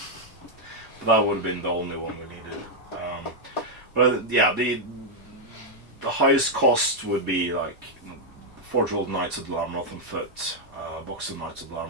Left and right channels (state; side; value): normal; both; correlation -0.02